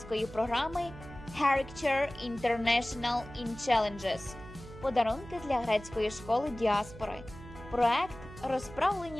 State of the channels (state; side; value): noise; right; hum, 15 dB below the sound